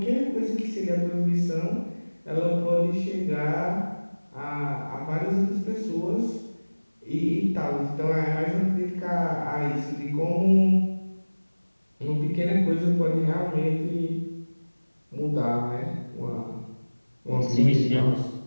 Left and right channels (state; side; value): inverted; both; correlation -1.00